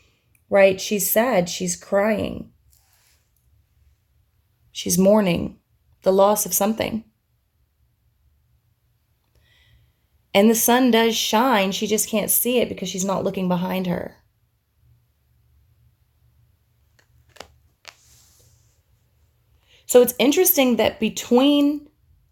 right? She's sad. She's crying. She's mourning the loss of something. And the sun does shine. She just can't see it because she's not looking behind her. So it's interesting that between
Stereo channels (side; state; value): both; identical; correlation 1.00